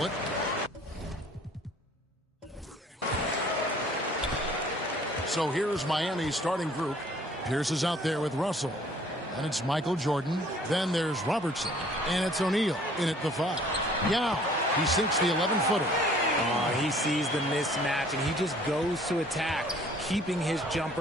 So here's Miami's starting group. Pierce is out there with Russell. And it's Michael Jordan. Then there's Robertson. And it's O'Neal in at the 5. Yao. He sinks the 11-footer. He sees the mismatch, and he just goes to attack, keeping his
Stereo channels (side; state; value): both; normal; correlation 0.56